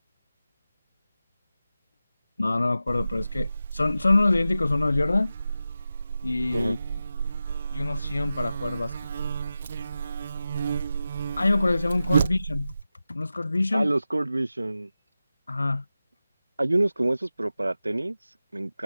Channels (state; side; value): inverted; both; correlation -0.93